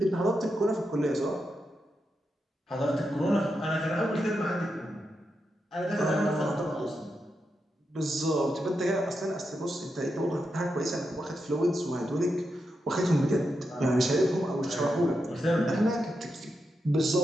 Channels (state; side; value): normal; both; correlation 0.86